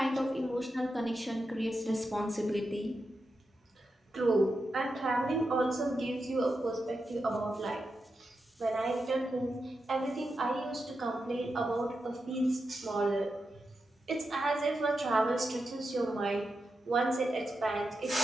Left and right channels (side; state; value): both; normal; correlation 0.88